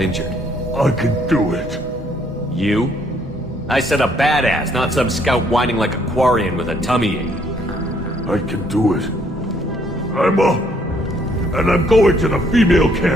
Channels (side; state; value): both; normal; correlation 0.67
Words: I can do it. You? I said a badass, not some scout whining like a Quarian with a tummy ache. I can do it. I'm up. And I'm going to the female